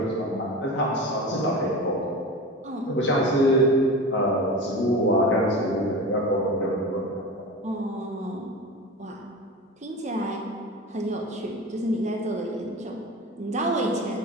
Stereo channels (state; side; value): normal; both; correlation 0.30